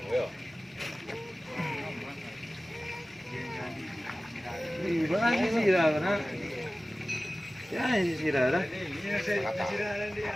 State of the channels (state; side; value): normal; both; correlation 0.97